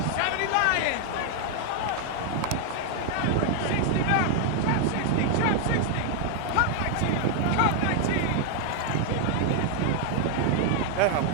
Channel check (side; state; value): both; different; correlation 0.00